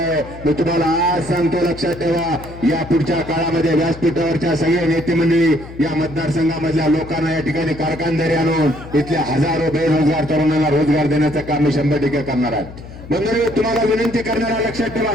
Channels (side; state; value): left; noise; hum, 15 dB below the sound